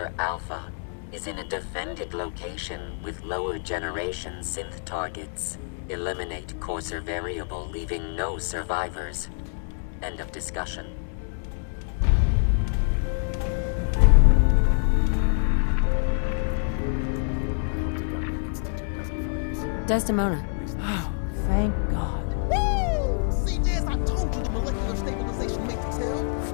Alpha is in a defended location with lower generation synth targets. Eliminate Courser variable, leaving no survivors. End of discussion. I hope to God the Institute doesn't find us here. Desdemona. Oh, thank God. Woo! CJS, I told you the molecular stabilization matrix held.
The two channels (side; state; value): right; silent; digital silence